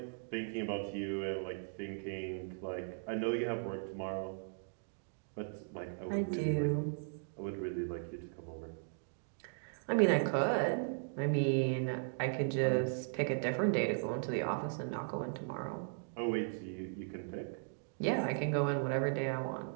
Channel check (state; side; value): silent; left; digital silence